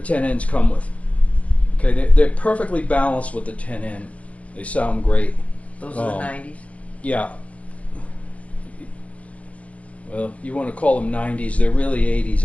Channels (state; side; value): late; right; 0.065 ms